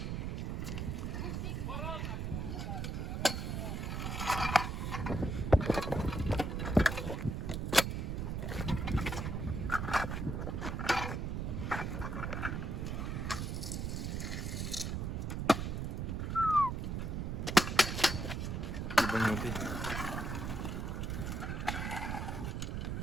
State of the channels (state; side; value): noise; right; rumble, 2 dB below the sound